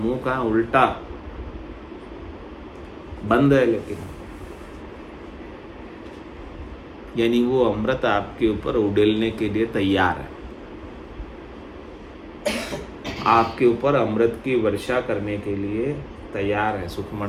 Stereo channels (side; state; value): both; identical; correlation 1.00